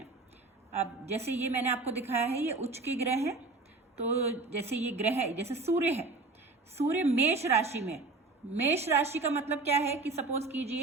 अब जैसे ये मैंने आपको दिखाया है, ये उच्च के ग्रह हैं। तो जैसे ये ग्रह है, जैसे सूर्य है, सूर्य मेष राशि में। मेष राशि का मतलब क्या है कि सपोज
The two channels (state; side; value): quieter; left; 3.6 dB